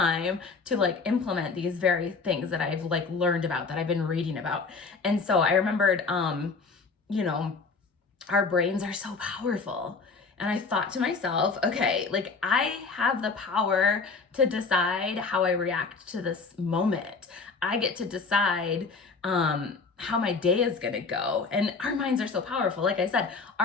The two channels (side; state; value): right; quieter; 4.5 dB